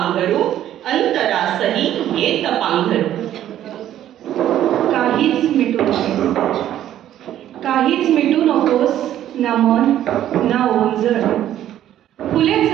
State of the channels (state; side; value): quieter; left; 11.8 dB